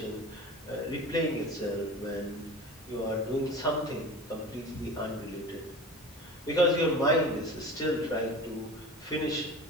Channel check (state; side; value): normal; both; correlation 0.35